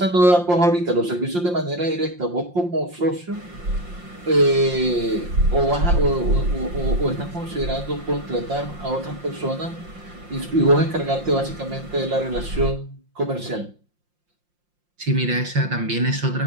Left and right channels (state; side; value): late; left; 5.7 ms